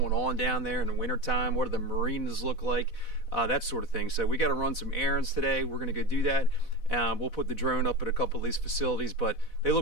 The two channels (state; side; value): late; right; 4.0 ms